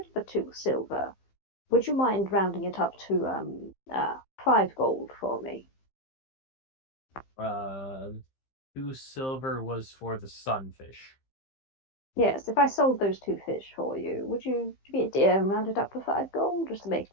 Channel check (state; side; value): late; right; 15 ms